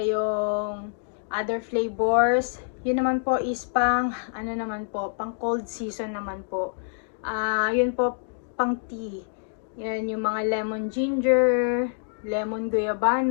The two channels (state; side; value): silent; right; digital silence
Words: other flavors. Yun naman po is pang pang cold season naman po. Yun po pang tea. Yan yung mga lemon ginger, lemon